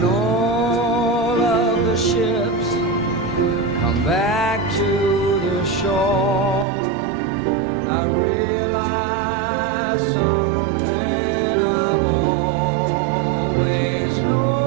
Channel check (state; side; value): drops out; left; at 6.7 s